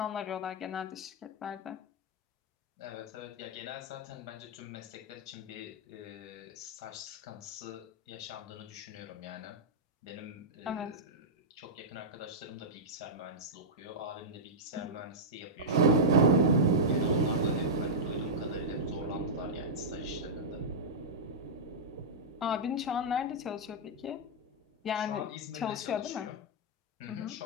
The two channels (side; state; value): both; normal; correlation -0.09